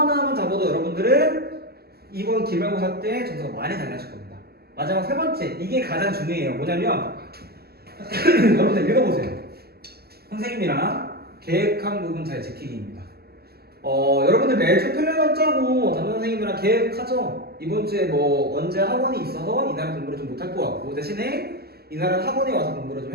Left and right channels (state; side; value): late; left; 0.46 ms